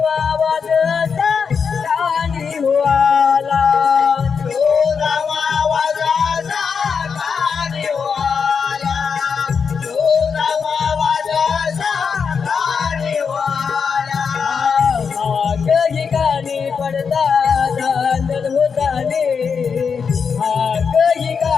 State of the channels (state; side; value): quieter; right; 6.0 dB